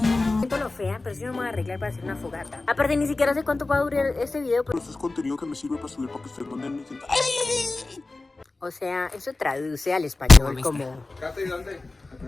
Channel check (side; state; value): right; quieter; 3.3 dB